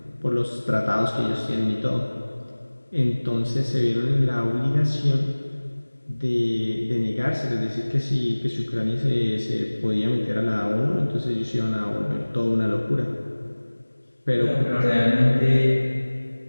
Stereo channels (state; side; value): inverted; both; correlation -1.00